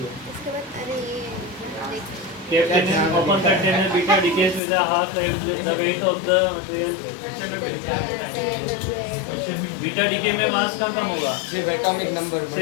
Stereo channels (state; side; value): drops out; right; at 4.6 s